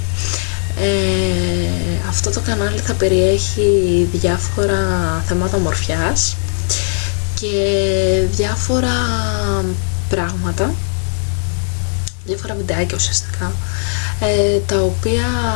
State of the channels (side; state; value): right; silent; 57 dB below the other